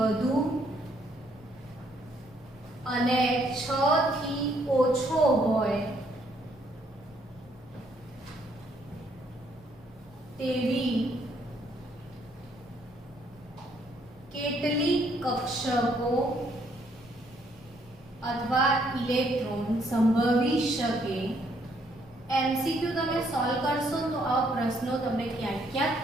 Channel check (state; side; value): noise; right; rumble, 28 dB below the sound